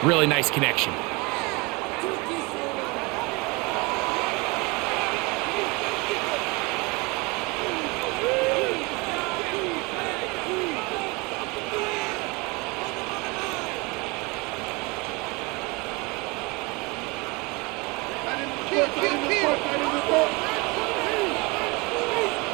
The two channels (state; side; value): quieter; left; 26.8 dB